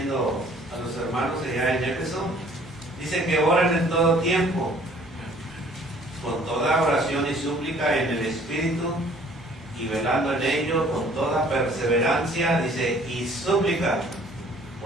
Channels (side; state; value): both; normal; correlation 0.56